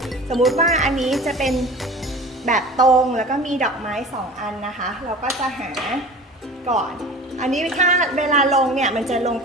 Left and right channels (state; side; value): normal; both; correlation 0.39